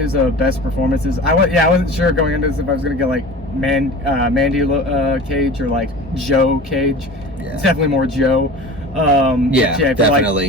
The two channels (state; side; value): normal; both; correlation 0.37